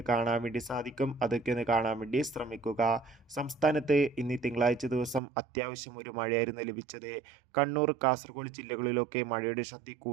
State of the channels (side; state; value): left; drops out; at 5.2 s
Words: കാണാൻ വേണ്ടി സാധിക്കും. അതൊക്കെ ഒന്ന് കാണാൻ വേണ്ടി ശ്രമിക്കുക. സംസ്ഥാനത്ത് ഇന്ന് തിങ്കളാഴ്ച ദിവസം അത്യാവശ്യം ഒരു മഴയായിരുന്നു ലഭിച്ചത്. കണ്ണൂർ, കാസർഗോഡ് ജില്ലകളിലൊക്കെ മഴയുടെ ശക്തി